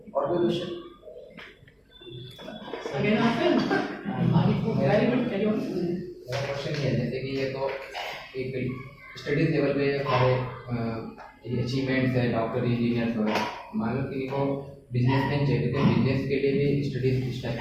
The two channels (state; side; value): identical; both; correlation 1.00